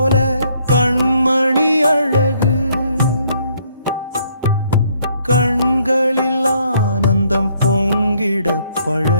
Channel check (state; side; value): inverted; both; correlation -0.67